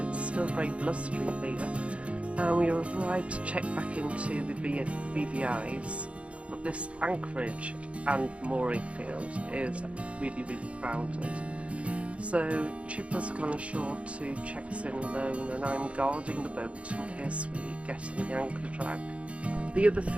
It's still very blustery there. And we arrived to check back into the BVIs. But this anchorage and mooring field is really, really crowded. So Chipper's gone ashore to check us in alone, and I'm guarding the boat in case we get in the anchor drag. The other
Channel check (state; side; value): late; left; 0.062 ms